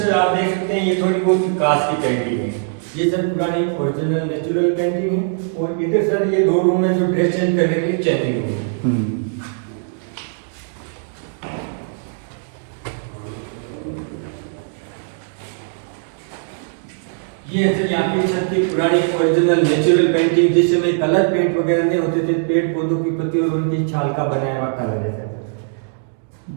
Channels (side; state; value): left; silent; digital silence